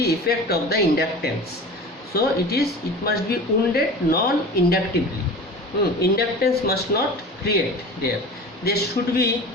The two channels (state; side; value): normal; both; correlation 0.35